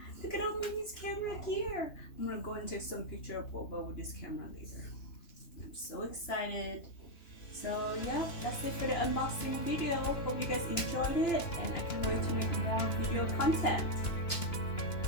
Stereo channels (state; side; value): late; right; 2.9 ms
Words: Look at all Mommy's camera gear. I'm gonna go and take some picture of Boba with this camera later. I'm so excited. So yeah, that's it for the unboxing video. Hope you guys enjoyed it, and I can't wait to make more videos content.